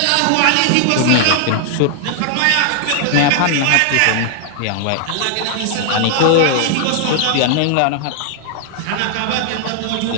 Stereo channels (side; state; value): both; different; correlation 0.00